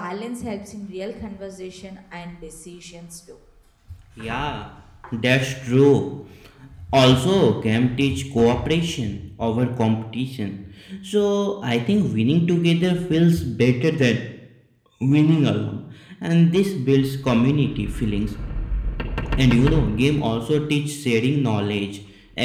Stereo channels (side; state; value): both; identical; correlation 1.00